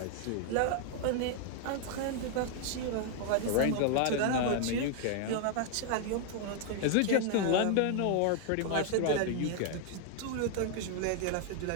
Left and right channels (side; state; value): both; different; correlation 0.00